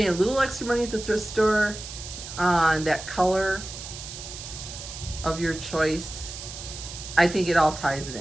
a little extra money at the thrift store on that color of your choice, I think it all ties it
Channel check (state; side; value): noise; right; hiss, 11 dB below the sound